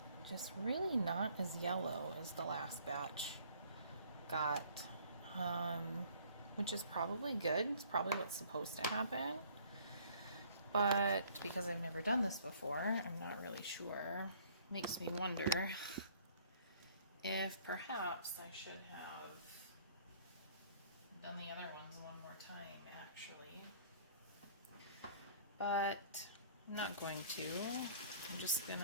just really not as yellow as the last batch got, which is probably good. It's probably what's supposed to happen, but because I've never done this before, I'm not really sure. Makes me wonder if perhaps I should have done the other ones one more time, actually. But I'm not going to. I'm just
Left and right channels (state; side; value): inverted; both; correlation -0.57